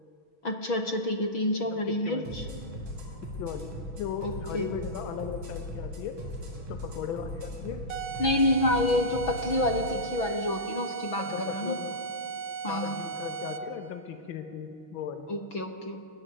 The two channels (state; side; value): late; right; 6.1 ms